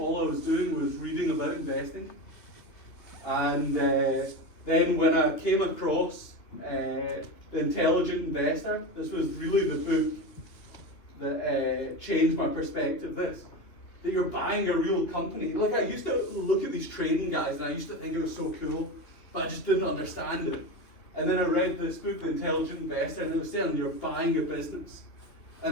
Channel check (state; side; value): late; right; 3.0 ms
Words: I was doing was reading about investing. And then when I came across The Intelligent Investor, this was really the book that changed my perspective. That you're buying a real company. Like, I used to look at these trading guys and I used to think it was so cool, but I just didn't understand it. And then I read this book, The Intelligent Investor, and it was saying you're buying a business.